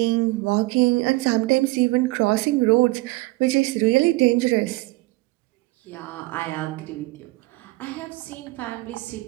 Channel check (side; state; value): left; quieter; 21.5 dB